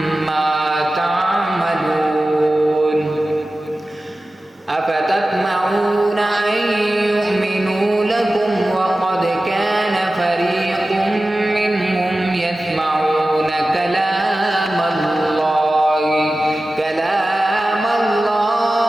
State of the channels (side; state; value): both; normal; correlation 0.95